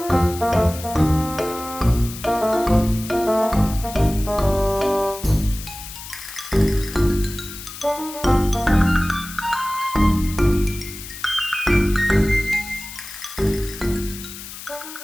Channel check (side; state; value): left; noise; hiss, 12 dB below the sound